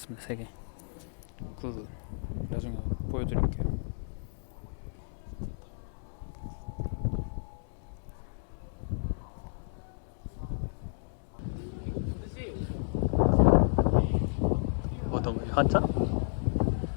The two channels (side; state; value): right; silent; digital silence